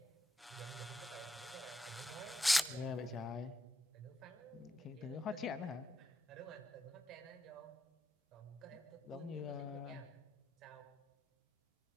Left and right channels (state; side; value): normal; both; correlation 0.83